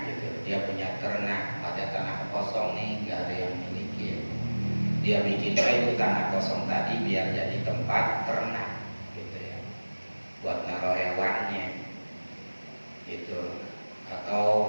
gitu, dia punya ternak, ada tanah kosong nih, nggak ada yang miliki. Dia bikin itu tanah kosong tadi biar jadi tempat ternak gitu ya, buat naruh hewannya gitu,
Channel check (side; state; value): both; inverted; correlation -1.00